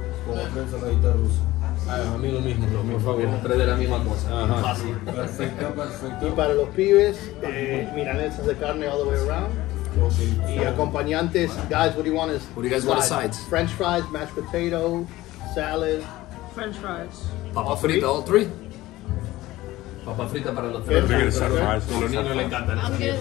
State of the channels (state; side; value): quieter; right; 17.3 dB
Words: como tres saladitas rusas. A mí lo mismo, por favor. Tres de la misma cosa. Fácil. Perfecto. Y para los pibes, milanesas de carne all the way around. Y acompañantes, guys, what do you want? What do you guys want as sides? French fries, mashed potato, salad. French fries. Papa frita, all three? Papa frita para los Good. tres. They're gonna set fries. A los niños les encantan I'm esas getting the